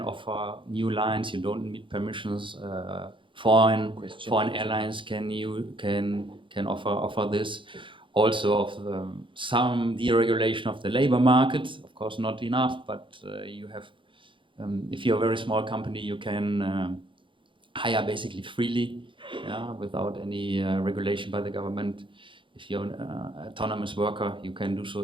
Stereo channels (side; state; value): left; late; 0.24 ms